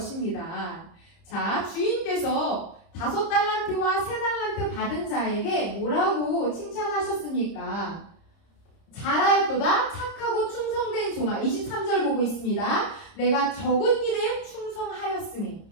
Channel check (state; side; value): late; right; 30 ms